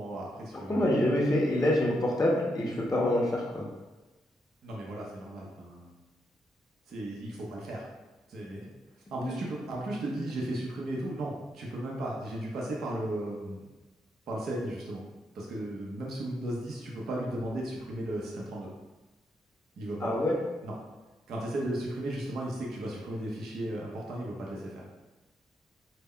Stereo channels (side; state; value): both; normal; correlation 0.80